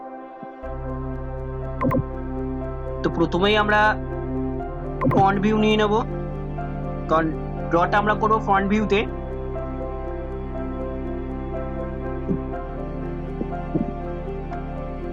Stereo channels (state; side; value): identical; both; correlation 1.00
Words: তো প্রথমেই আমরা ফ্রন্ট ভিউ নিয়ে নেব, কারণ ড্রটা আমরা করবো ফ্রন্ট ভিউতে।